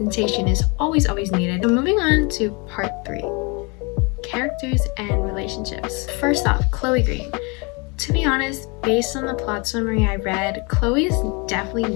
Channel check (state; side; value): quieter; right; 30.0 dB